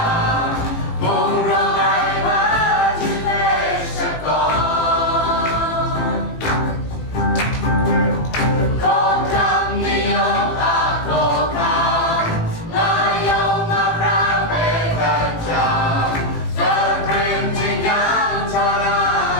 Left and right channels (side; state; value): right; late; 18 ms